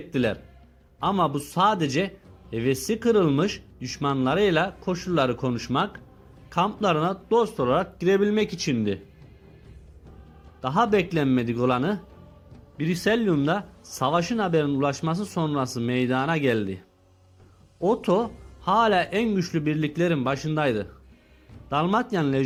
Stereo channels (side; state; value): both; identical; correlation 1.00